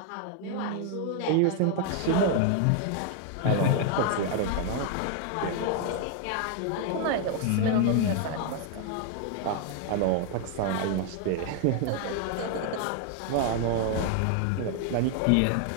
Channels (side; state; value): both; different; correlation 0.00